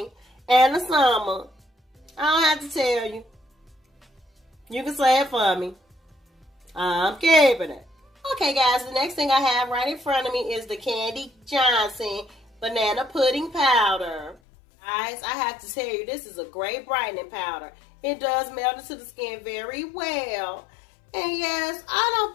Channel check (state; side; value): drops out; right; at 14.4 s